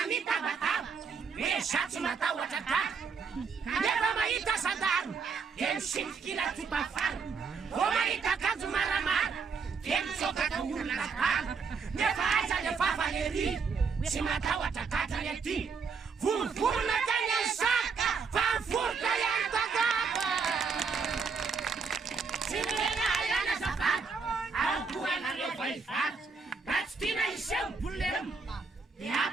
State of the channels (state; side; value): quieter; left; 5.3 dB